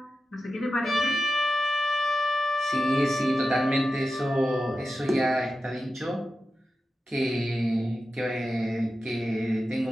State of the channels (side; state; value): both; normal; correlation 0.92